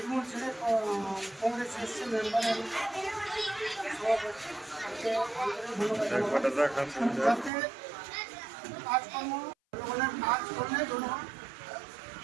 ছেড়ে কংগ্রেস এসছে মেম্বারের যাতে কাজকর্ম জনগণের কাজ করলে জনগণ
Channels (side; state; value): left; drops out; at 7.5 s